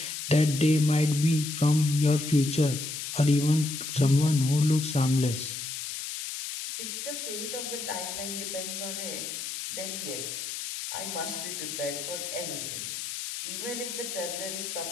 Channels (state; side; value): noise; left; hiss, 6 dB below the sound